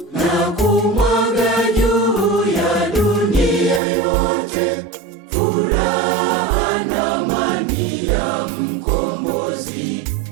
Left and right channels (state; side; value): drops out; left; at 3.8 s